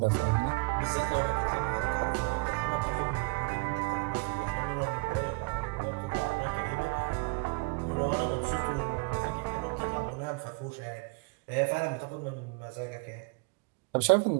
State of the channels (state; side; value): quieter; left; 27.5 dB